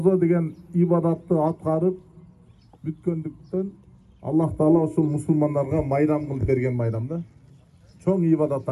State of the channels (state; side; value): identical; both; correlation 1.00